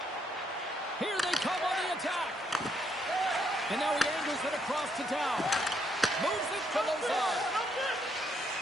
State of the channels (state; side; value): normal; both; correlation 0.74